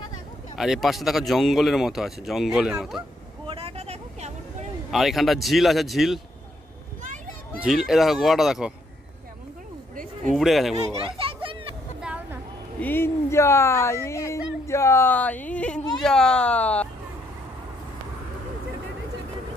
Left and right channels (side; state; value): both; normal; correlation 0.72